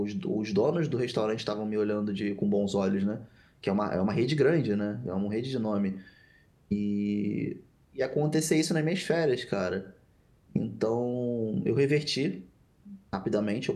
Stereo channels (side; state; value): both; identical; correlation 1.00